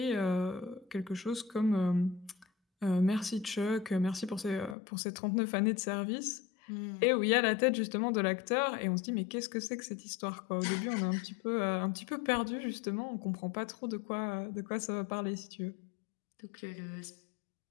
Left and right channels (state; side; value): drops out; right; at 4.8 s